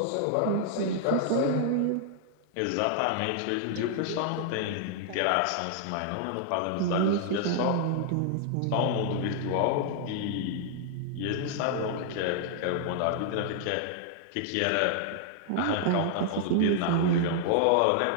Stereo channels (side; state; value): both; different; correlation -0.01